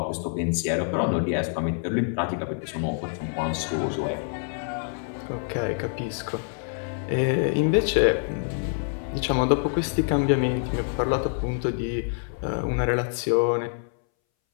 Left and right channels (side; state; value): right; silent; 61 dB below the other